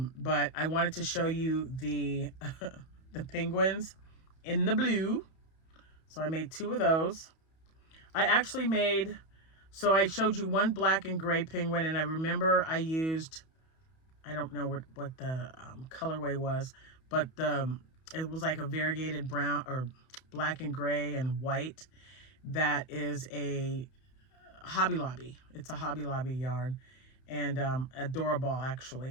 I wanted to show you the the penguins in the blue. So I made 2 of those. I actually so I showed you one black and gray penguin, and I remember I used, I don't know what the colorway was, but it was like a variegated brown or black and gray and white. That is a Hobby Lobby. It's a Hobby Lobby yarn, and adorable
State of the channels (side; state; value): right; late; 31 ms